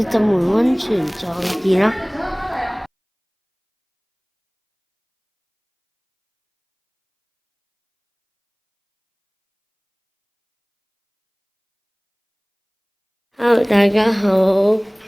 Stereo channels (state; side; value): identical; both; correlation 1.00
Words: 浸完温泉再見啦。Hello，大家好。